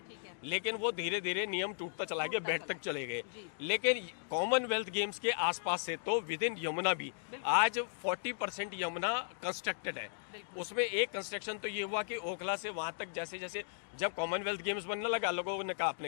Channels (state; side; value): silent; right; digital silence